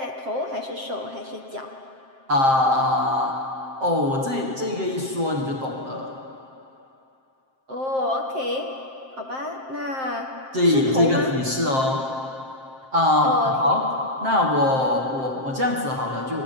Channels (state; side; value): late; left; 7.6 ms